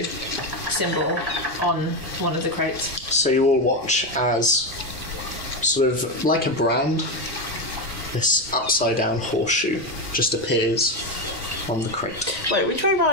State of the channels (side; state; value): right; noise; rumble, 18 dB below the sound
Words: symbol on one of the crates. So you all watch as, sort of like a brand, this upside down horseshoe just appears on the crate. Wait, which way